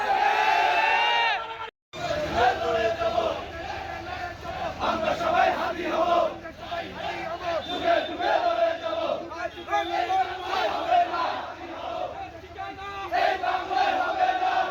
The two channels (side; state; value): both; identical; correlation 1.00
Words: আমরা সবাই হাতি হব, যুগে যুগে লড়ে যাব, এই বাংলায় হবে না।